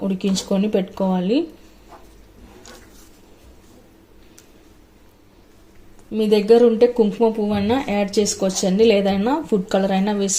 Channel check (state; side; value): identical; both; correlation 1.00